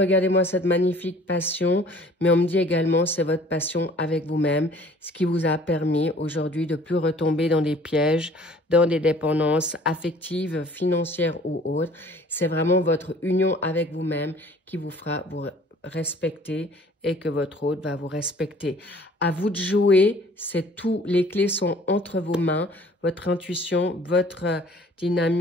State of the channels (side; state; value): both; normal; correlation 0.52